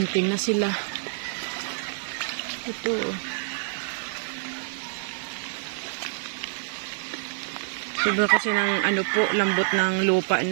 na sila. Ito. Sobra kasi ng lambot ng lupa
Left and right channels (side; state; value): left; silent; 60 dB below the other